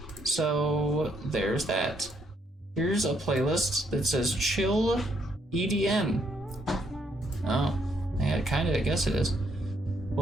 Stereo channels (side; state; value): both; normal; correlation 0.73